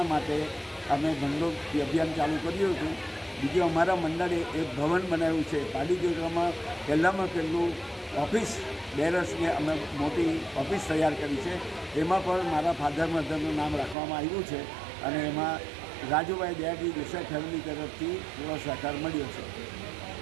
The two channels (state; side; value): drops out; left; at 14.0 s